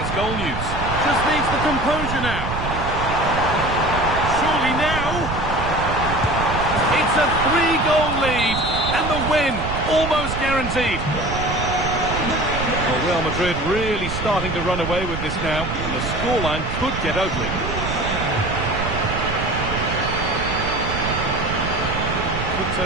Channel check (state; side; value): noise; right; rumble, 5 dB below the sound